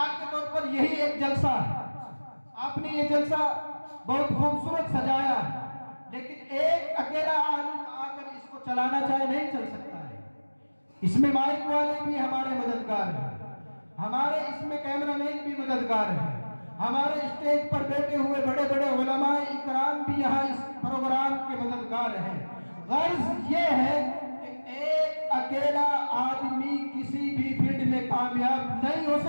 کے طور پر یہی ایک جلسہ ہے، آپ نے یہ جلسہ بہت خوبصورت سجایا ہے، لیکن ایک اکیلا عالم آ کر اس کو چلانا چاہے نہیں چل سکتا ہے۔ اس میں مائک والے بھی ہمارے مددگار ہیں، ہمارے اس میں کیمرہ مین بھی मददगार हैं। हमारे स्टेज पर बैठे हुए बड़े बड़े उलमाए इकराम भी यहाँ इस प्रोग्राम के मददगार हैं। गर्ज ये है कि एक अकेला आदमी किसी भी फील्ड में कामयाब नहीं हो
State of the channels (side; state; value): both; inverted; correlation -1.00